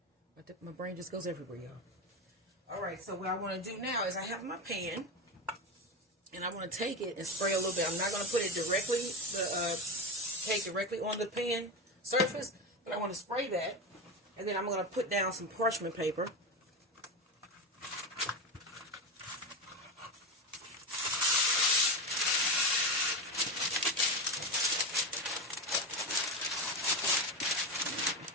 My brain just goes everywhere, y'all. Alright, so what I want to do now is I have my pan. And I want to take it and spray a little bit. I'm not going to put it directly, cake directly on the pan surface. But I want to spray that. And then I'm going to put down some parchment paper.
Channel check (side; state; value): both; normal; correlation 0.19